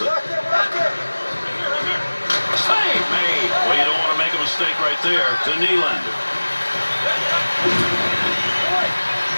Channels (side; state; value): both; inverted; correlation -1.00